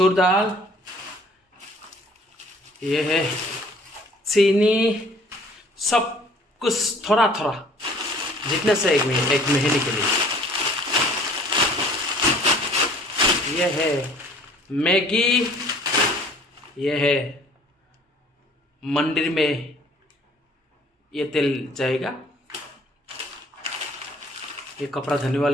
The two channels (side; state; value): both; normal; correlation 0.54